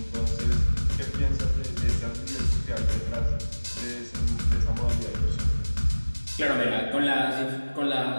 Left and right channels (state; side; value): inverted; both; correlation -1.00